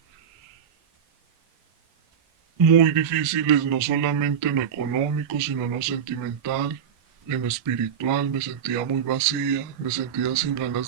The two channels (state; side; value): quieter; left; 7.9 dB